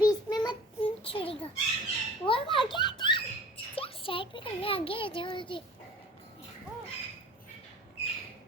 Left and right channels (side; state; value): both; normal; correlation 0.43